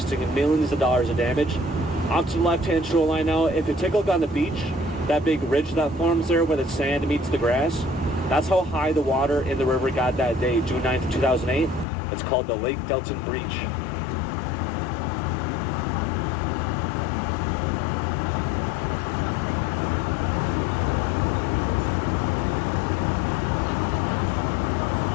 millions of dollars of damage. Off to the left-hand shoreline now, if you take a look on the beach, that big ridge that forms there where the sand meets the grass, that's how high the water in the river got that day, June 9th, 2008. It's called the Lake Delton Breach.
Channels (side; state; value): right; drops out; at 11.9 s